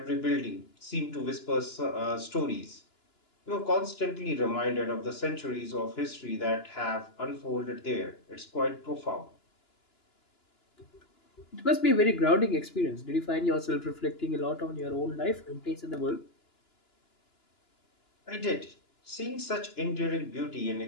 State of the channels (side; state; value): right; late; 2.9 ms